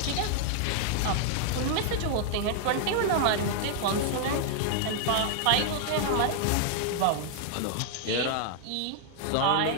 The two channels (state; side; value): different; both; correlation 0.00